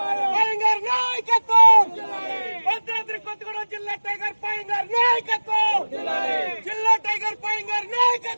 పయంగార్ నాయకత్వం. భద్రాద్రి కొత్తగూడెం జిల్లా టైగర్ పయంగార్ నాయకత్వం, జిల్లా టైగర్ పయంగార్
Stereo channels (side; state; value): both; inverted; correlation -1.00